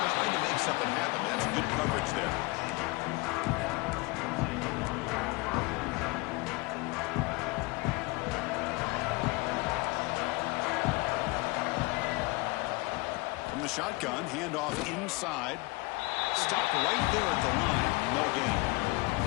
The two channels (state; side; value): quieter; right; 24.8 dB